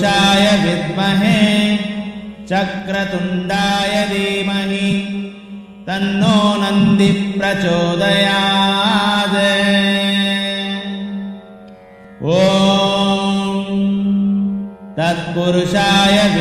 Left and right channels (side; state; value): both; identical; correlation 1.00